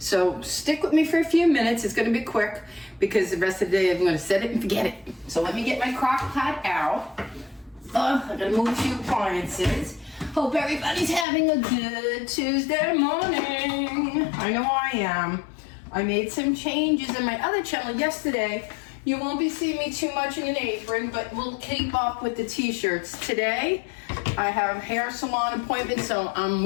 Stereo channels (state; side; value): drops out; right; at 11.2 s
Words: So stick with me for a few minutes. It's gonna be quick because the rest of the day I'm gonna set it and forget it. So let me get my crock pot out. I gotta move a few appliances. Hope everybody's having a good Tuesday morning. I know I am. I made some changes in my other channel yesterday. You won't be seeing me too much in an apron, but we'll keep up with the t-shirts. Today, I have a hair salon appointment, so I'm